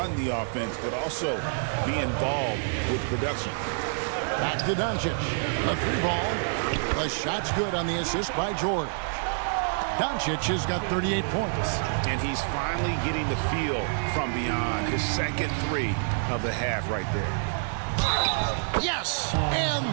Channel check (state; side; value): silent; left; 60 dB below the other